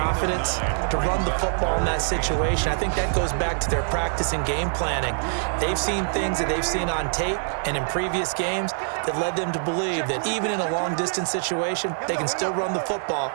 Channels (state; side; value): silent; left; digital silence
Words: to run the football in that situation. I think that goes back to their practice and game planning. They've seen things that they've seen on tape and in previous games that led them to believe that even in a long-distance situation, they can still run the football